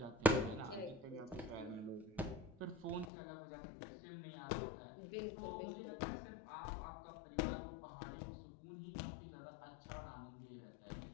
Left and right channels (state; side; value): drops out; right; at 3.1 s